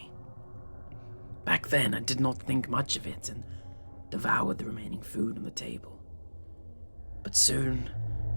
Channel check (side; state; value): both; inverted; correlation -1.00